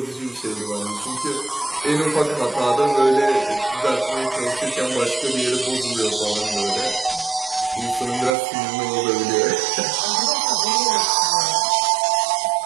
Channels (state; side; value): drops out; left; at 8.3 s